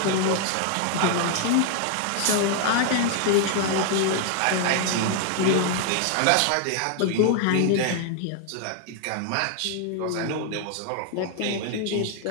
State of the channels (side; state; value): both; different; correlation 0.00